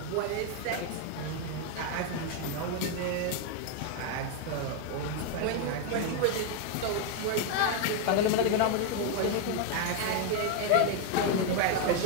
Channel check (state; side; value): different; both; correlation 0.00